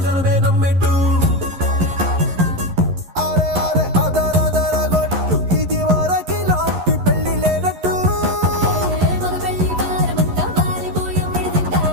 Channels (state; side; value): late; left; 11 ms